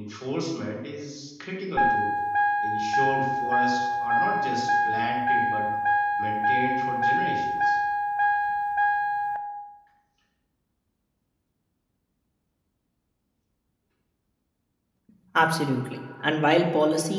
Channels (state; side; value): identical; both; correlation 1.00